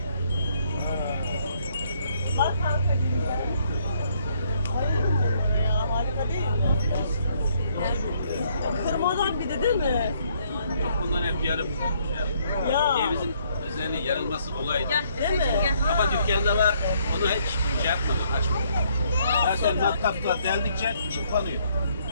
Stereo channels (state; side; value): inverted; both; correlation -0.68